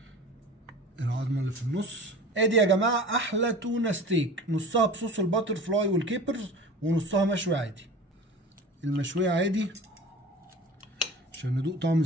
العظمه اللي في النص. ادي يا جماعه احلى تونه ستيك، نصها بصوص الباتر فلاي والكيبرز ونصها مشوي عادي. المشويه عادي عشان ندوق طعم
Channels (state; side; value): normal; both; correlation 0.37